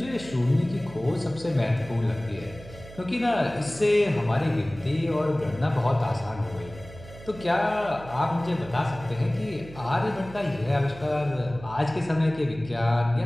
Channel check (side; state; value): right; noise; hum, 17 dB below the sound